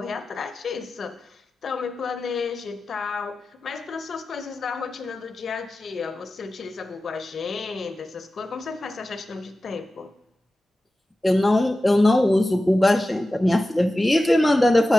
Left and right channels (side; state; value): both; normal; correlation 0.94